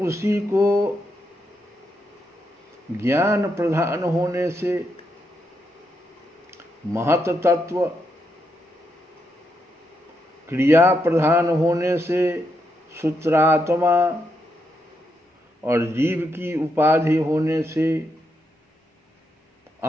को ज्ञान प्रधान होने से महत तत्व, क्रिया प्रधान होने से सूत्रात्मा और जीव की उपाधि होने से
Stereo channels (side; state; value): both; normal; correlation 0.81